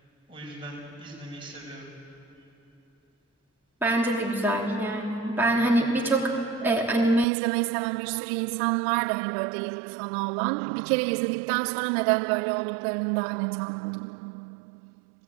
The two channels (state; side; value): drops out; left; at 7.2 s